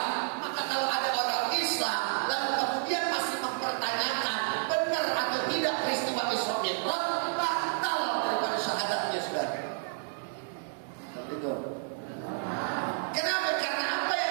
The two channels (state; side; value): silent; left; digital silence